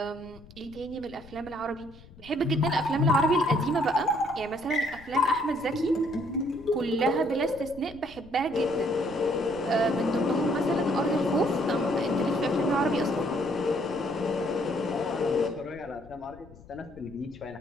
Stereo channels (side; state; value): left; noise; rumble, 21 dB below the sound